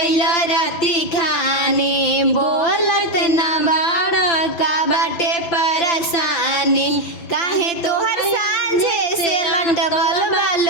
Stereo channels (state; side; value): late; right; 6.2 ms